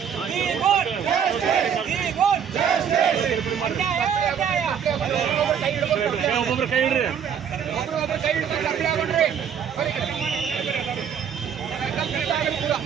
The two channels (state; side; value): quieter; left; 7.9 dB